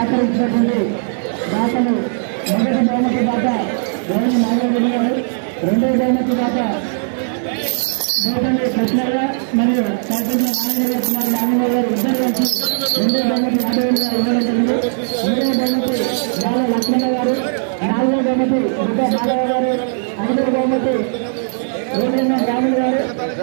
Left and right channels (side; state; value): left; silent; digital silence